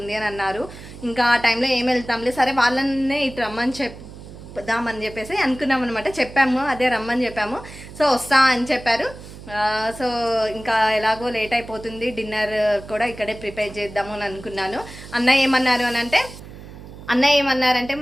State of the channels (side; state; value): right; noise; hum, 15 dB below the sound